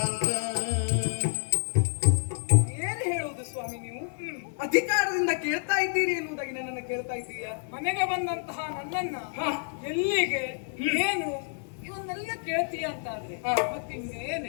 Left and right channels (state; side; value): silent; right; 59 dB below the other